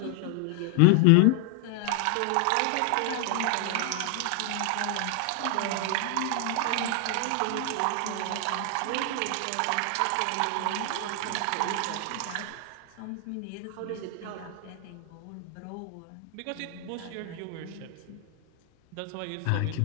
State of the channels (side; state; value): both; different; correlation 0.00